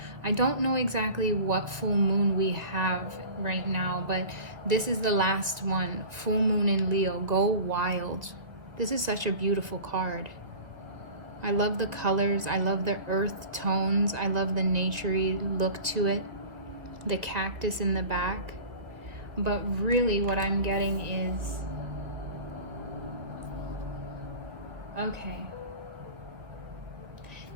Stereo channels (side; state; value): left; late; 1.8 ms